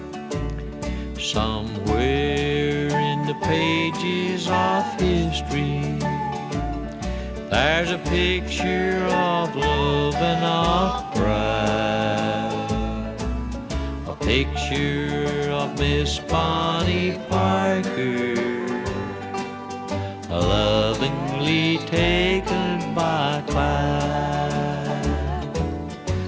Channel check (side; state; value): both; identical; correlation 1.00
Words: Somewhere pages of history. There's a picture of love and of pride, a picture of Miss Bonnie Parker, lovingly taken by Clyde.